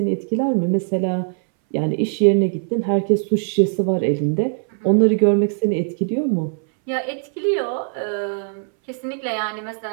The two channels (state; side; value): silent; left; 63 dB below the other